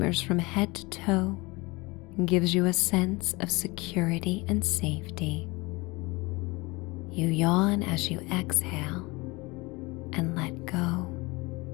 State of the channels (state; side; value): quieter; right; 24.4 dB